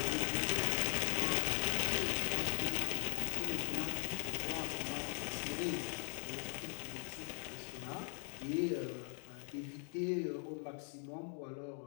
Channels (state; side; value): silent; right; 51 dB below the other